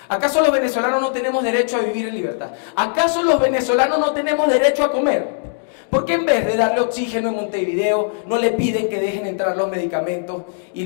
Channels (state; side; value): silent; right; digital silence